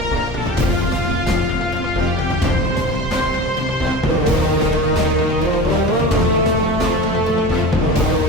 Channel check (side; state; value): both; normal; correlation 0.33